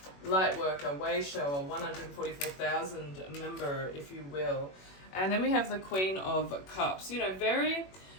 light worker, way shower, 144,000 member, if you will. And then we have the Queen of Cups. Very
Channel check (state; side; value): late; right; 21 ms